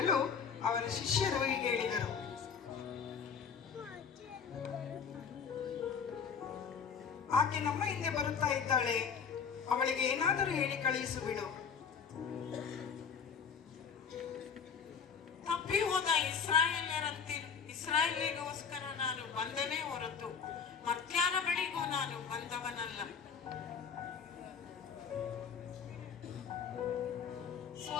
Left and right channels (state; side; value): quieter; right; 6.5 dB